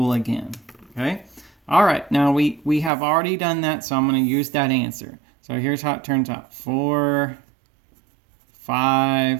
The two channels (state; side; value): drops out; left; at 2.9 s